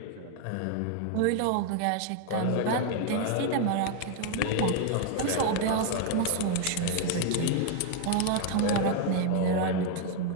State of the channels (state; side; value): different; both; correlation 0.01